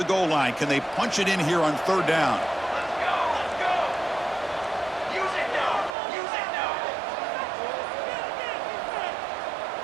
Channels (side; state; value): left; drops out; at 6.0 s